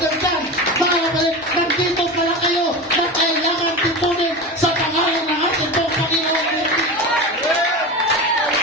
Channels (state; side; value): normal; both; correlation 0.25